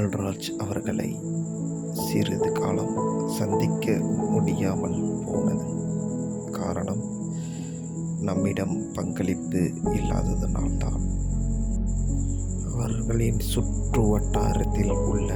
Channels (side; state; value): both; identical; correlation 1.00